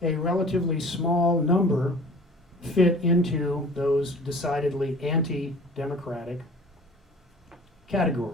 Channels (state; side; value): normal; both; correlation 0.46